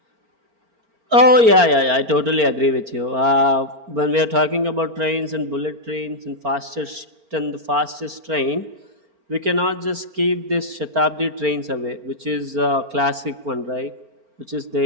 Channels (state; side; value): late; left; 4.4 ms